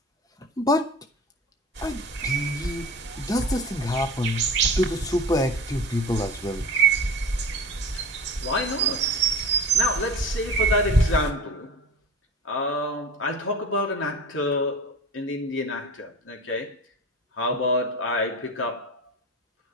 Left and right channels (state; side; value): normal; both; correlation 0.36